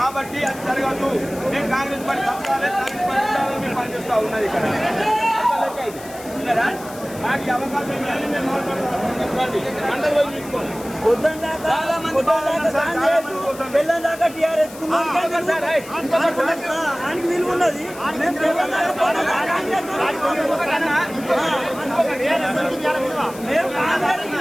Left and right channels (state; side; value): noise; left; hiss, 17 dB below the sound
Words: అది జరగదు. మేము కాంగ్రెస్ పార్టీ పనిచేస్తూ ఉన్నది ఇక్కడ నాకు అవకాశం దాకా టీఆర్ఎస్ విలువ ఉన్నది.